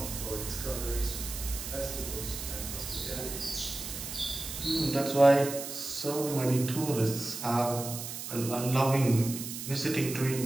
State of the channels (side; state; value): right; noise; hiss, 7 dB below the sound